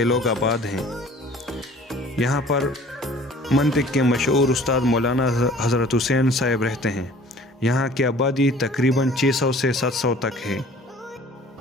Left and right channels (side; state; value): both; normal; correlation 0.50